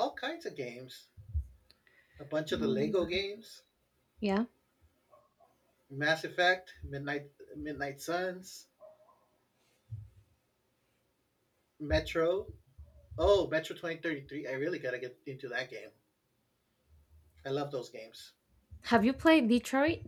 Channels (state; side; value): identical; both; correlation 1.00